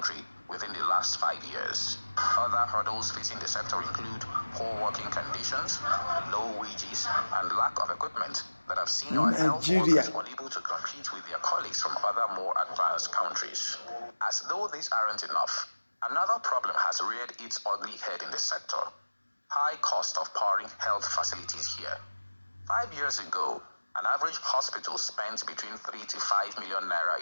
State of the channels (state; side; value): inverted; both; correlation -1.00